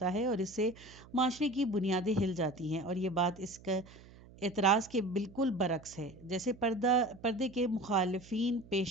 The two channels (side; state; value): right; noise; hum, 21 dB below the sound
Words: ہے اور اس سے معاشرے کی بنیادیں ہل جاتی ہیں، اور یہ بات اس کا اعتراض کے بالکل برعکس ہے جیسے پردے کے مخالفین